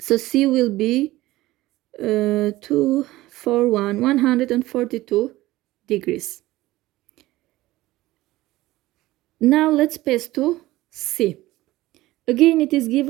C will be 142 degrees. Now let's pass to C. Again, it is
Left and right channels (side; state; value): left; quieter; 17.5 dB